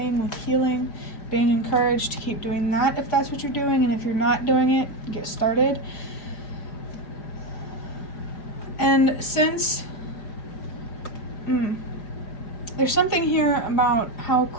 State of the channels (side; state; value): right; late; 4.8 ms